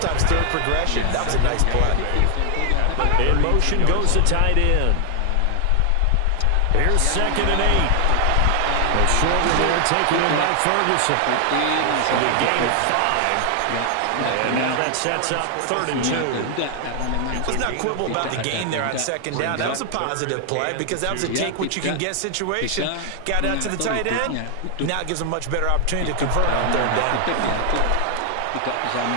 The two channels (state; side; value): different; both; correlation 0.00